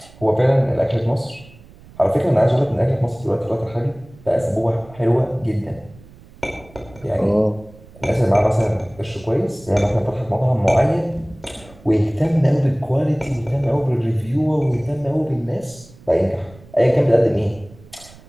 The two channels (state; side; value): noise; right; rumble, 23 dB below the sound